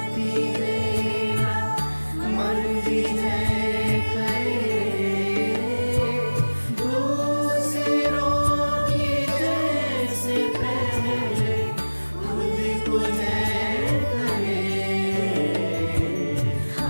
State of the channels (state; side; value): inverted; both; correlation -1.00